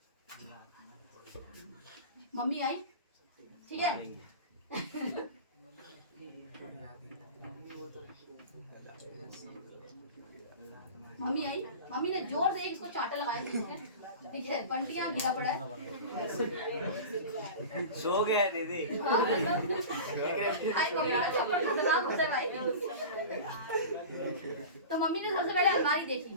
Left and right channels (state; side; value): inverted; both; correlation -0.33